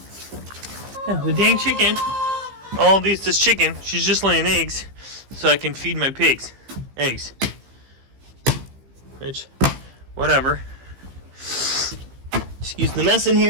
Yeah, the dang chicken. All this chicken, she's just laying eggs so I can feed my pigs. Eggs. Which, whatever. Excuse the mess in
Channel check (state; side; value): late; left; 15 ms